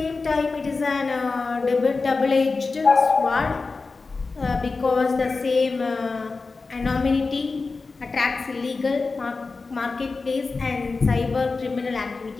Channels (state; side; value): quieter; right; 4.0 dB